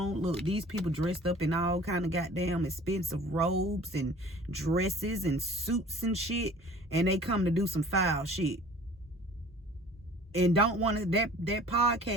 Look, these people dressed up in all kind of goddamn expensive robes and dresses and suits and shit. And they come to do some foul shit. And don't want to, that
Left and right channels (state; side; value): normal; both; correlation 0.47